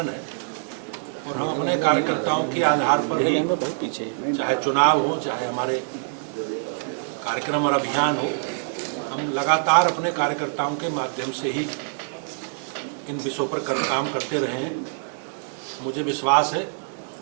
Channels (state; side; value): silent; left; 57 dB below the other